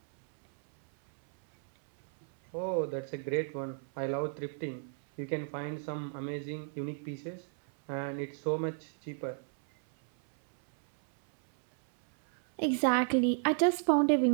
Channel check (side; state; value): left; silent; 56 dB below the other